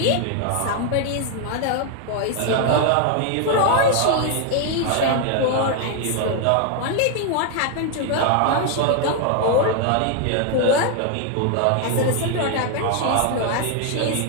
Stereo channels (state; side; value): different; both; correlation 0.00